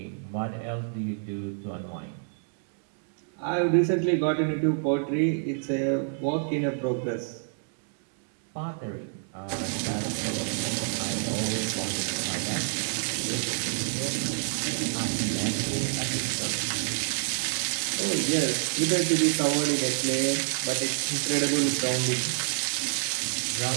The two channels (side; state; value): left; silent; digital silence